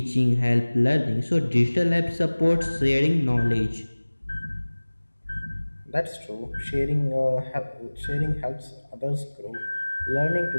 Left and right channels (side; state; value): both; inverted; correlation -1.00